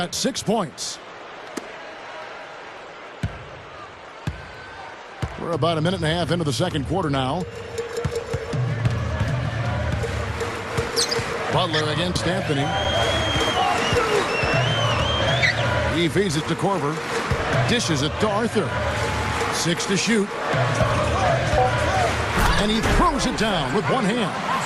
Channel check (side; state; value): both; identical; correlation 1.00